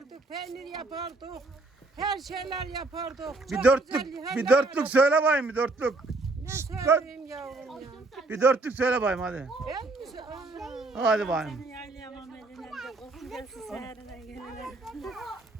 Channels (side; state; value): left; quieter; 3.3 dB